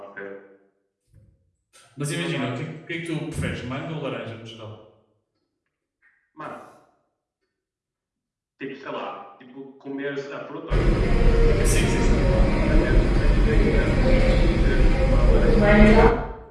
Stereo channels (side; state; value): both; identical; correlation 1.00